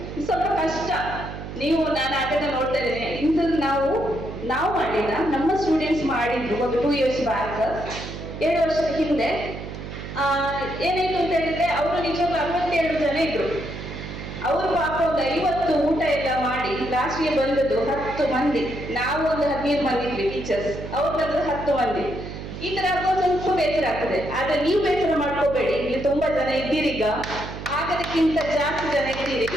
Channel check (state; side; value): noise; right; hum, 9 dB below the sound